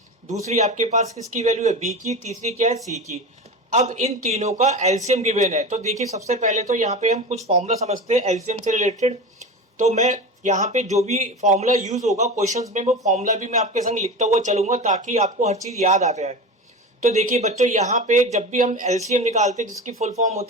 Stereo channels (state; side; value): normal; both; correlation 0.27